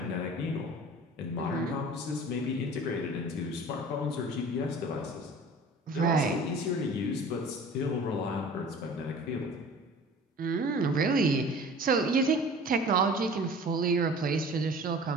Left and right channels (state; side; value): normal; both; correlation 0.43